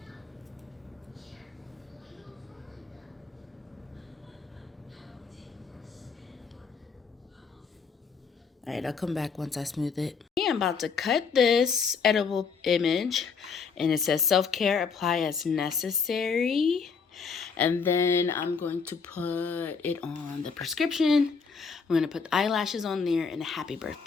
Alright, I'll come back once I smooth it. I'm about to cut this edible image, and it says self-care, apply as necessary. And then I'm going to put it on the prescription. I'm going to put the eyelashes on there and a happy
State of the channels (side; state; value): right; quieter; 5.5 dB